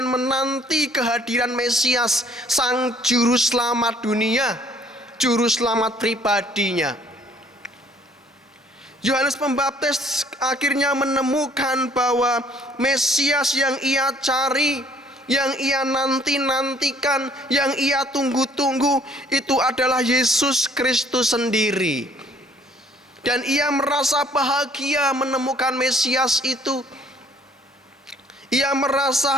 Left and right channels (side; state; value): both; normal; correlation 0.59